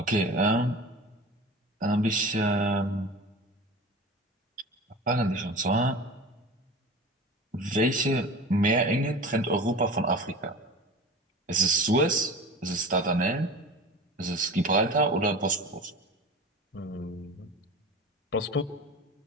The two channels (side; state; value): both; normal; correlation 0.35